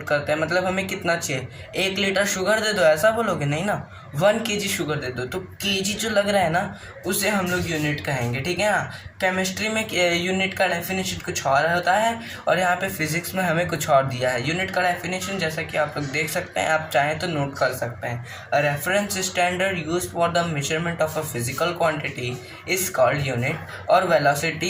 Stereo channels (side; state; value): both; identical; correlation 1.00